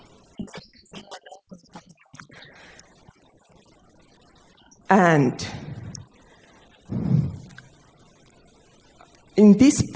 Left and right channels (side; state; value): both; identical; correlation 1.00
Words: E este sim é nossa responsabilidade. And in this